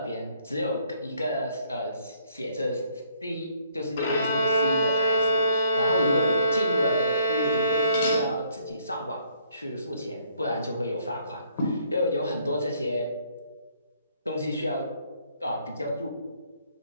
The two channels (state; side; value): inverted; both; correlation -0.65